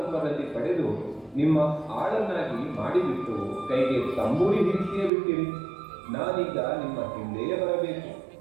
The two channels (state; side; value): drops out; left; at 5.1 s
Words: ಪಡೆದು ನಿಮ್ಮ ಆಳನ್ನಾಗಿ ಮಾಡಿಬಿಟ್ಟು ಕೈಗೆ ತಂಬೂರಿ ಹಿಡಿಸಿಯೇ ಬಿಟ್ಟಿರಿ. ನಾನೀಗ ನಿಮ್ಮ ಹಿಂದೆಯೇ ಬರಬೇಕು,